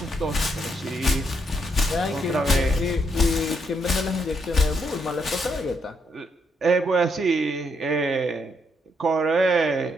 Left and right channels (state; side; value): normal; both; correlation 0.76